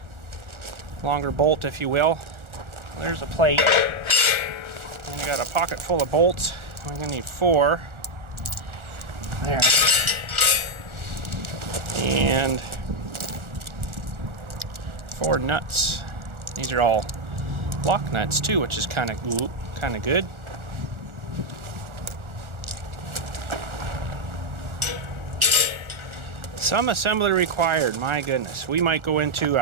longer bolt if you will. There's a plate, and I got a pocket full of bolts. We're gonna need 4 there, and 4 nuts. These are all lock nuts too, which is kind of good. Some assembly required, my goodness. We might go into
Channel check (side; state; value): left; late; 1.4 ms